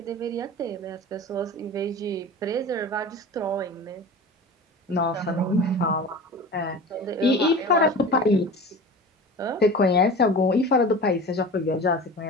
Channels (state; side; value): normal; both; correlation 0.34